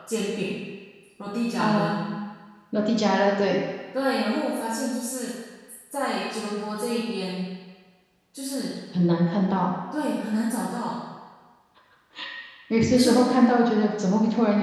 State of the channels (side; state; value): both; identical; correlation 1.00